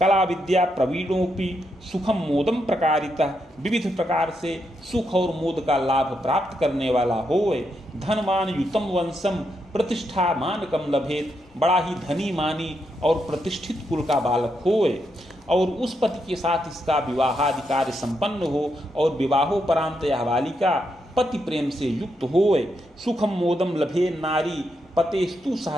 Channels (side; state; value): both; normal; correlation 0.81